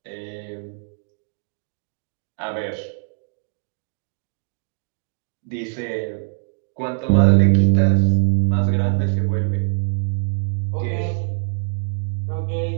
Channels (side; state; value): left; silent; digital silence